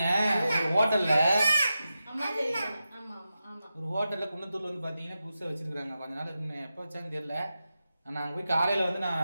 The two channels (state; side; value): inverted; both; correlation -0.91